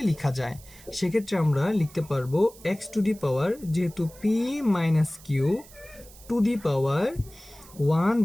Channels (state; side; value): noise; right; hiss, 21 dB below the sound